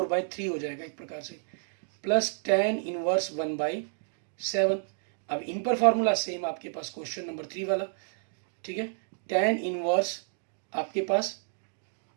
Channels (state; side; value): silent; left; digital silence